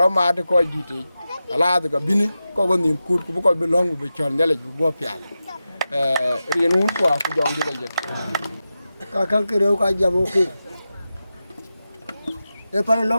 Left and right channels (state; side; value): inverted; both; correlation -0.92